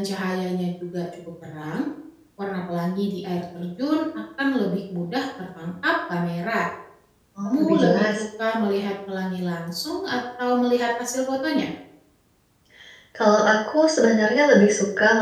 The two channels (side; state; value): both; identical; correlation 1.00